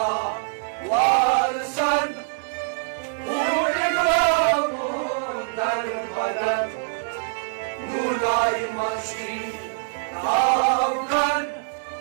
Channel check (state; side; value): silent; left; digital silence